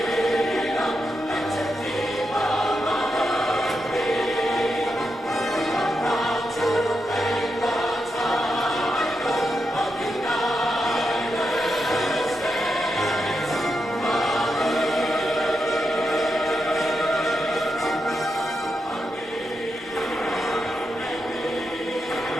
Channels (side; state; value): both; normal; correlation 0.85